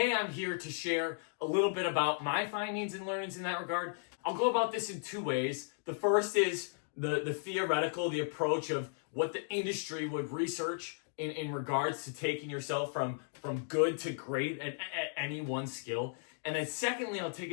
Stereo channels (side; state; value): right; silent; digital silence